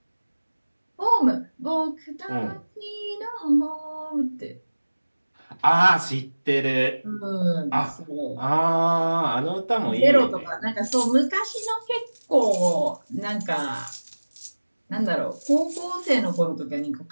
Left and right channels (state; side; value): inverted; both; correlation -1.00